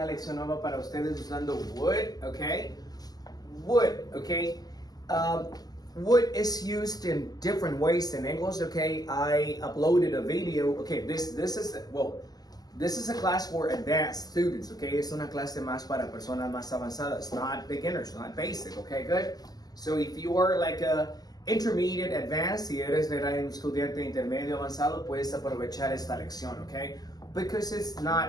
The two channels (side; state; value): right; late; 0.19 ms